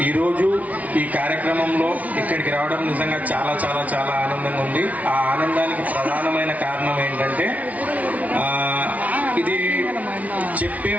ఈరోజు ఈ కార్యక్రమంలో ఇక్కడికి రావడం నిజంగా చాలా చాలా చాలా ఆనందంగా ఉంది. ఆ ఆనందానికి ప్రధానమైన కారణం ఏంటంటే ఇది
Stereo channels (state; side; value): late; left; 0.070 ms